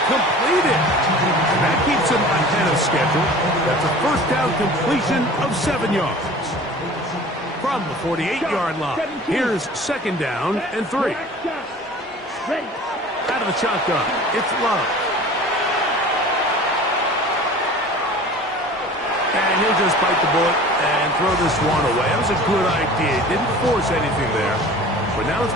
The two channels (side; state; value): both; normal; correlation 0.42